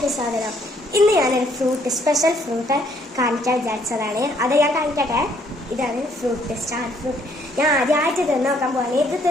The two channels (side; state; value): both; normal; correlation 0.66